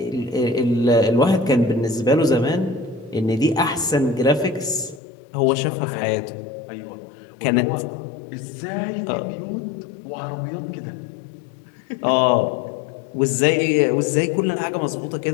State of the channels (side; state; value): right; drops out; at 5.0 s